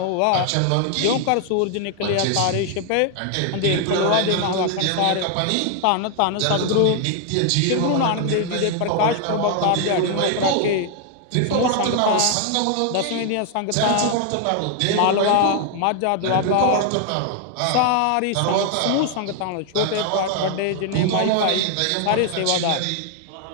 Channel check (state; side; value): different; both; correlation 0.00